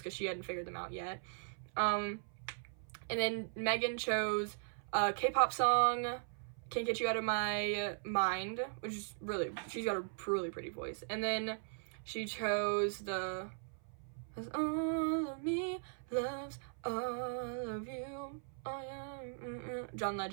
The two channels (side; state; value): left; silent; 52 dB below the other